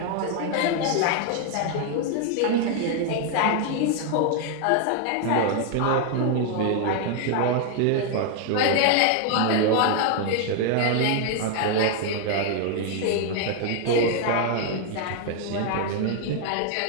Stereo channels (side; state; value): both; different; correlation 0.00